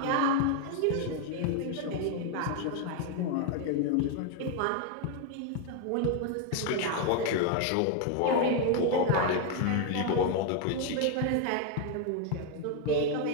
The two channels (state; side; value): different; both; correlation 0.01